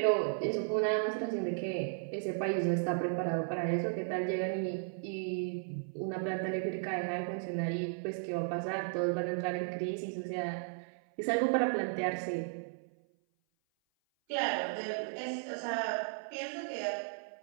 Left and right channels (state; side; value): silent; left; 55 dB below the other